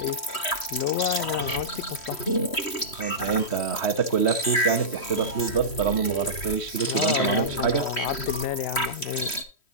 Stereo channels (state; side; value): late; right; 3.1 ms